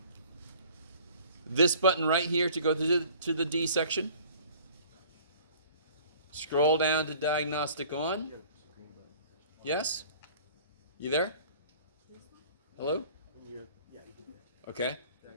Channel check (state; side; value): inverted; both; correlation -0.50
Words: This button right here to go to the D section. Scroll down to diagnostic on. Yes? You there? Hello? Okay.